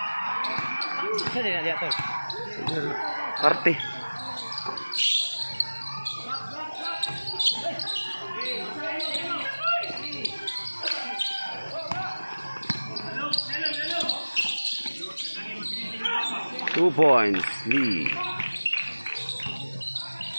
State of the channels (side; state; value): both; inverted; correlation -1.00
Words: Sa din dia to. Party. Two points lead.